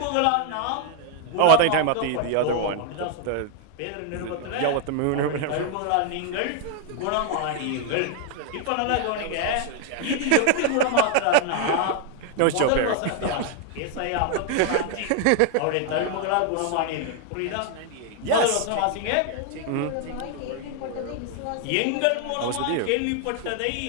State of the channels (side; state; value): both; different; correlation 0.00